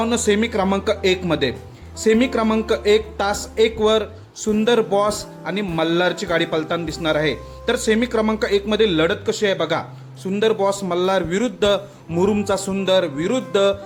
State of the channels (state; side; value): identical; both; correlation 1.00